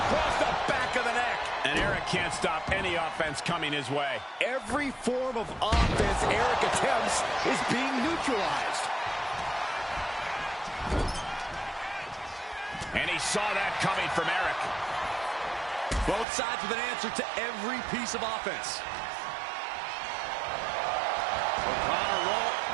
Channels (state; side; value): drops out; left; at 16.2 s